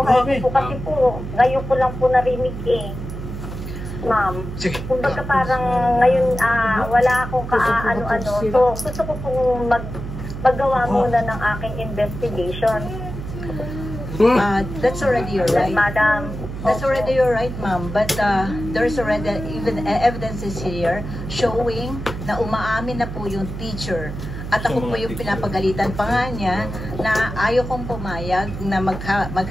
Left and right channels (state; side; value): noise; right; hum, 8 dB below the sound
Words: po kasi po, ngayon ko lang po narinig ma'am. Sige. Kumbaga parang ngayon wala akong kaano-ano. So gusto ko pong maggawa muna ng aking investigation. That's already your right. Madam. That's already your right, ma'am. But there's already even evidences here showing na umaamin na po yung teacher. At ako po yung pinapagalitan pa nga niya na ayaw kong pumayag na